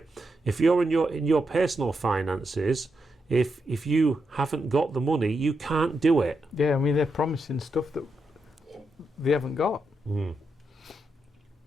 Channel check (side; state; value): both; normal; correlation 0.84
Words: If you're in your personal finances, if you haven't got the money, you can't do it. Yeah, I mean, they're promising stuff that they haven't got.